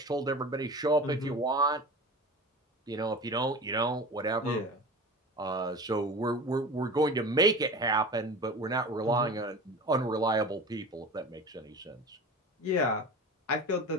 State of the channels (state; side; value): normal; both; correlation 0.34